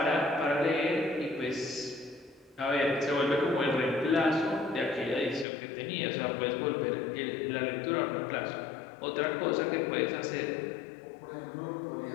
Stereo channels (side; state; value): right; drops out; at 5.5 s